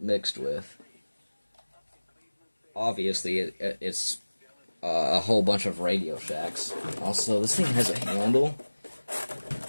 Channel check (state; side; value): inverted; both; correlation -1.00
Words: mixed with. Obviously, it's a whole bunch of Radio Shacks. Also, this thing has a handle,